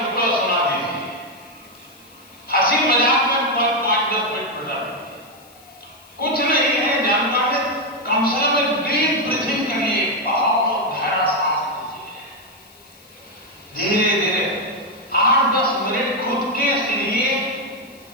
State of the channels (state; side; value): noise; left; hiss, 26 dB below the sound